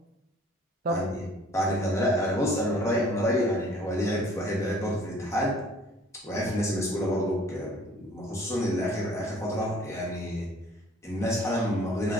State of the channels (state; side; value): normal; both; correlation 0.54